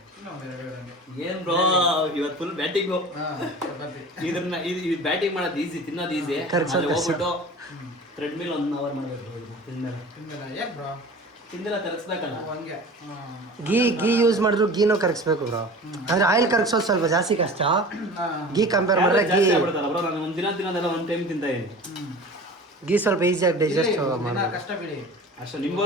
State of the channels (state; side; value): normal; both; correlation 0.39